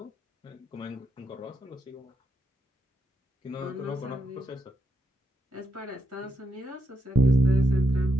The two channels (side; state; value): both; normal; correlation 0.81